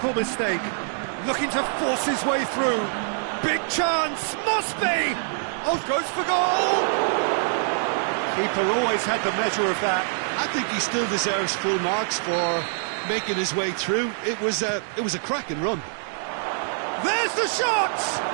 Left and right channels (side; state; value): left; silent; digital silence